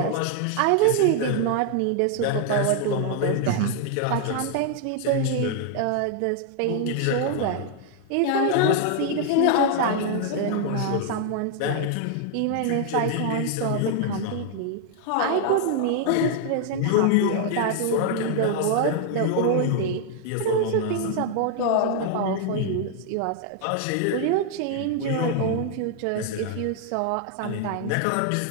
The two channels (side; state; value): both; different; correlation 0.00